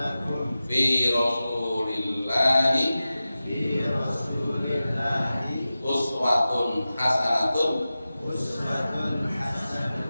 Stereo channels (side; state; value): both; inverted; correlation -0.95